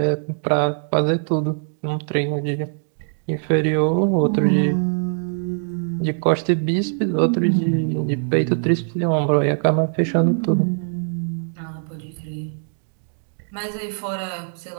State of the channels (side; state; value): left; silent; digital silence